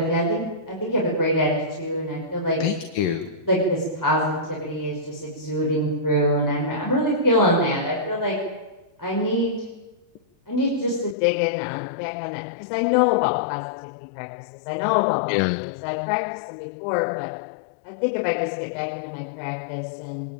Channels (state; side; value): drops out; right; at 11.2 s